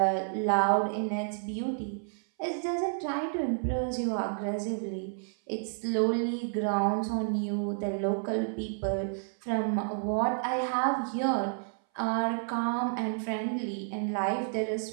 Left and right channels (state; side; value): silent; left; 57 dB below the other